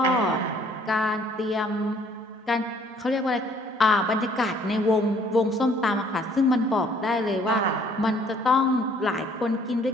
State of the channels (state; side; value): normal; both; correlation 0.60